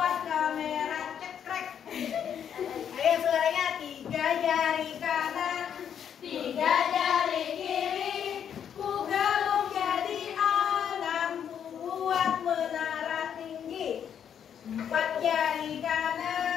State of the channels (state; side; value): quieter; right; 8.6 dB